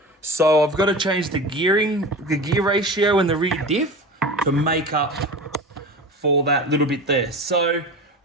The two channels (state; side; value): normal; both; correlation 0.31